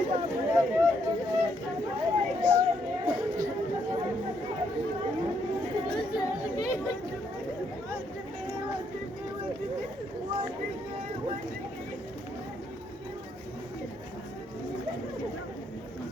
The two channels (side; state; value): both; normal; correlation 0.74